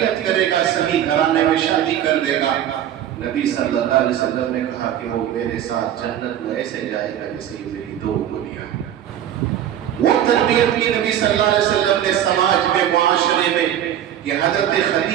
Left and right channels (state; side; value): quieter; left; 10.8 dB